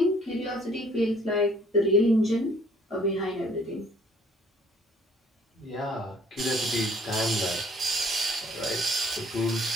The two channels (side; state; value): both; normal; correlation 0.59